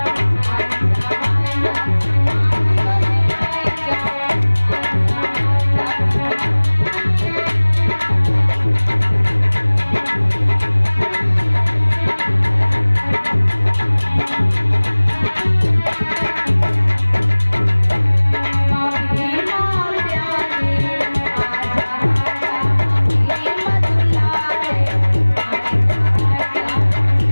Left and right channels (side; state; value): both; inverted; correlation -1.00